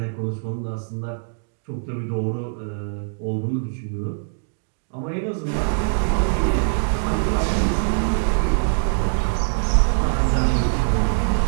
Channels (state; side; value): silent; left; digital silence